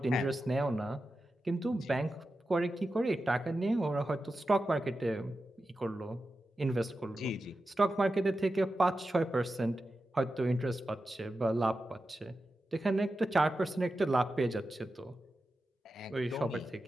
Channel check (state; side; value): normal; both; correlation 0.91